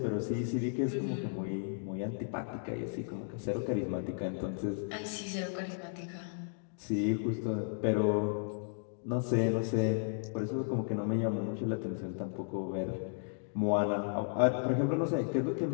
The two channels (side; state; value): right; silent; digital silence